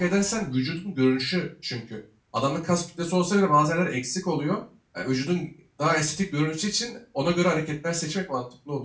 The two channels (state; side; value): identical; both; correlation 1.00